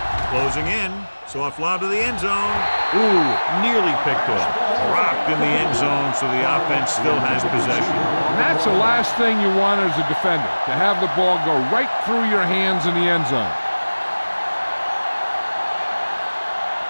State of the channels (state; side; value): inverted; both; correlation -1.00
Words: closing in. Soft lob to the end zone. Ooh, nearly picked off. Dropped in the end zone, so the offense still has possession. And that's the last thing you want as a defender, to have the ball go right through your hands in the end zone.